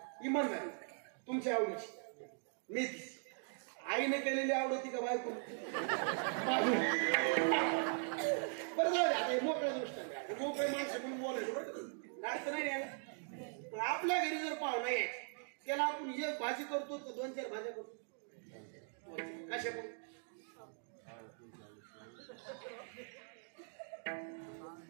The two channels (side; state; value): left; silent; 51 dB below the other